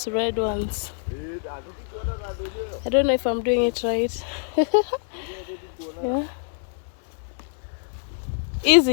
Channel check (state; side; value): silent; right; digital silence